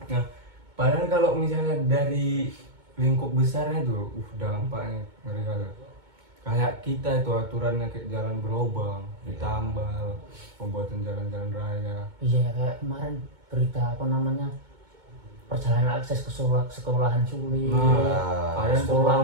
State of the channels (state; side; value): late; left; 2.2 ms